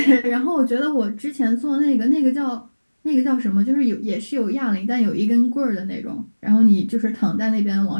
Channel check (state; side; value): inverted; both; correlation -1.00